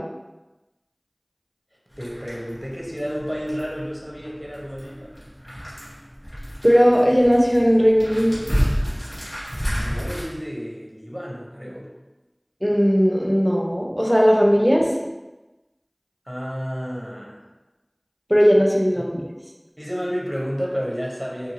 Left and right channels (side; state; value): both; identical; correlation 1.00